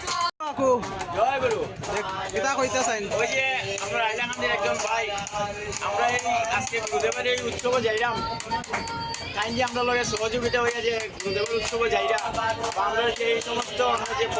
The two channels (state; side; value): identical; both; correlation 1.00